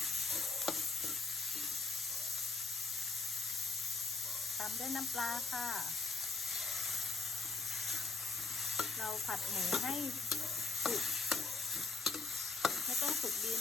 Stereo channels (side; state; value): right; quieter; 3.9 dB